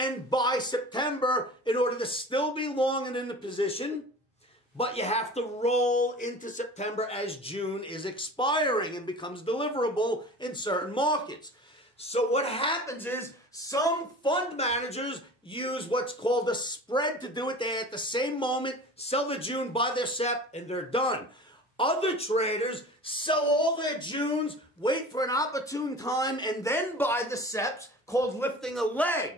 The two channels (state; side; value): normal; both; correlation 0.39